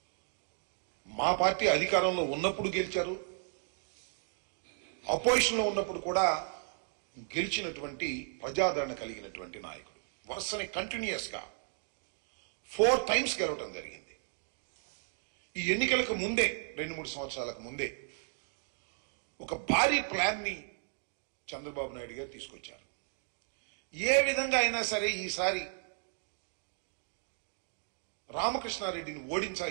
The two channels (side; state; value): left; silent; 55 dB below the other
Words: మా పార్టీ అధికారంలో ఉన్నప్పుడు గెలిచారు, అపోజిషన్లో ఉన్నప్పుడు కూడా గెలిచినటువంటి ప్రజాదరణ కలిగినటువంటి నాయకుడు. వరుసని కంటిన్యూస్ గా 4 times గెలవడం జరిగింది. ఈ ఎన్నికలకు ముందే 2-3 సంవత్సరాలకు ముందే ఒక భారీ ప్లాన్ ని చంద్రబాబు నాయుడు గారు తీసుకొచ్చారు. ఏ విధంగా అయినా సరే ఈసారి రామకృష్ణారెడ్డిని